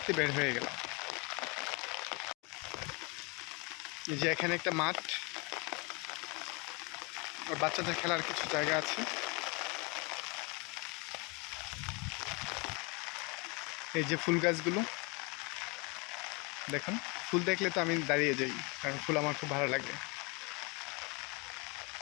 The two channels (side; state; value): right; quieter; 29.3 dB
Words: বের হয়ে গেলাম। এই যে এখানে একটা মাঠ, আর বাচ্চাদের খেলার কিছু জায়গা আছে। এই যে ফুল গাছগুলো দেখুন, ফুল দেখলে তো আমি দাঁড়িয়ে যাই, কারণ ফুল আমার খুব ভালো লাগে।